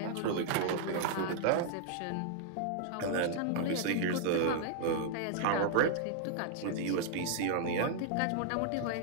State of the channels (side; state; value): both; different; correlation -0.01